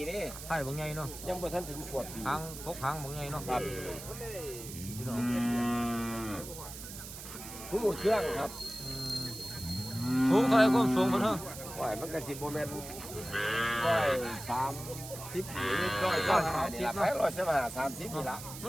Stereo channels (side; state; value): right; noise; hiss, 11 dB below the sound